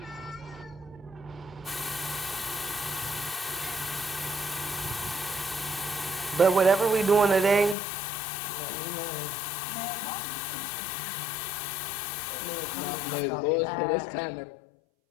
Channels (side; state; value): right; drops out; at 7.8 s